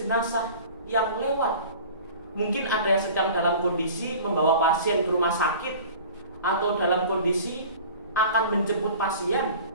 yang lewat. Mungkin ada yang sedang dalam kondisi membawa pasien ke rumah sakit, atau dalam kondisi akan menjemput pasien,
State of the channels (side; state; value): both; inverted; correlation -0.41